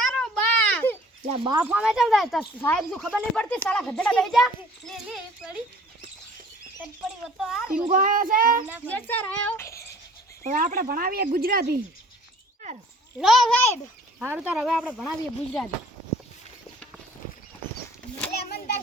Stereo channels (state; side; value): normal; both; correlation 0.53